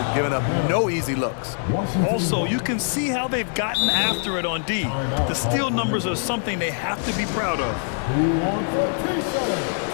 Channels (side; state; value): right; silent; 63 dB below the other